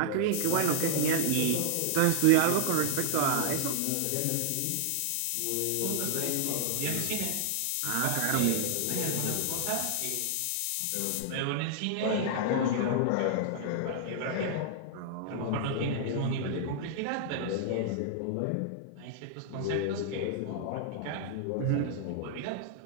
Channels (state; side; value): different; both; correlation -0.01